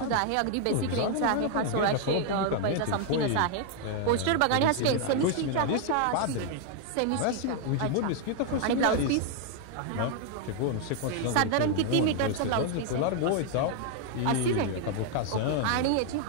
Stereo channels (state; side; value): different; both; correlation 0.00